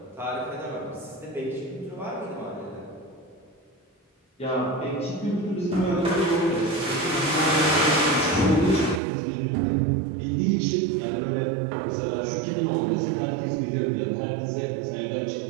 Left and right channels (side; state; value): left; drops out; at 9.0 s